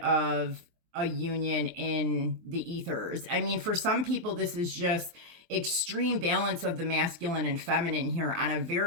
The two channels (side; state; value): left; late; 23 ms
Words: a union in the ethers. I mean, for some people, this is just extreme balance of the masculine and feminine here on a